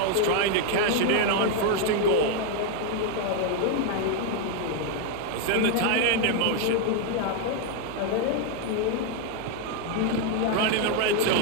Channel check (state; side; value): different; both; correlation 0.01